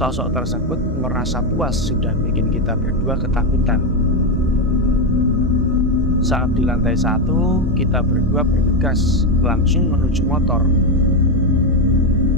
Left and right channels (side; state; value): both; normal; correlation 0.07